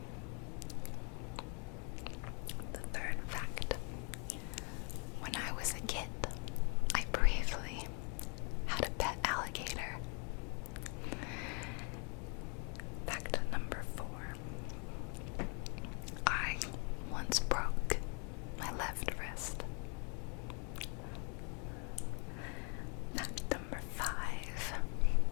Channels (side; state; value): right; quieter; 36.4 dB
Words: The third fact: when I was a kid, I briefly had a pet alligator. Fact number 4: I once broke my left wrist. Fact number 5: